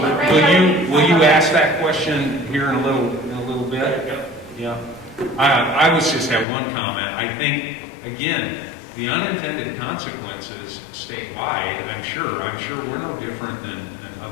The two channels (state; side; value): drops out; right; at 6.5 s